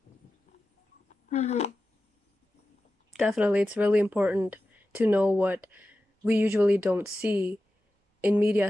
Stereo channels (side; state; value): both; normal; correlation 0.93